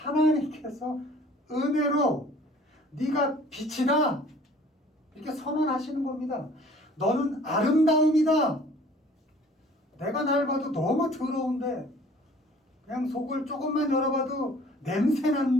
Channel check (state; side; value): normal; both; correlation 0.52